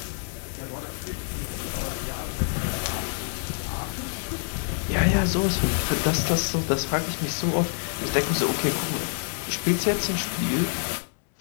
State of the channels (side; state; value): right; silent; 60 dB below the other